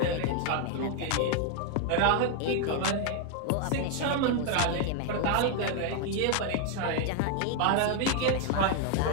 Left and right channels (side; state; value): both; different; correlation 0.00